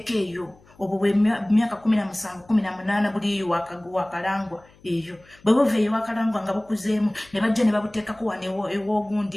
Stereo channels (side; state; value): left; noise; hum, 28 dB below the sound